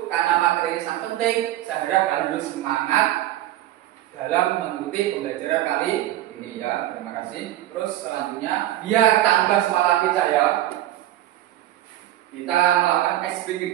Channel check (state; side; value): quieter; left; 14.1 dB